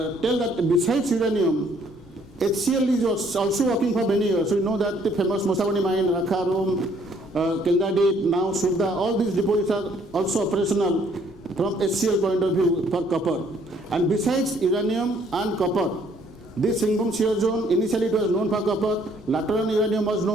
tell that besides uranium, HCl is also working for many years. So you know that the famous Mosavani mine, Rakharum, Kendadip, now Surda, all these deposits are also operational from HCl point of view for copper. And besides uranium and copper, this Singhbhum shear zone, initially it was known for copper, later on uranium was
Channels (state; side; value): normal; both; correlation 0.64